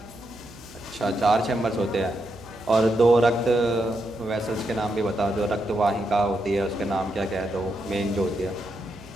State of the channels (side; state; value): right; noise; hum, 22 dB below the sound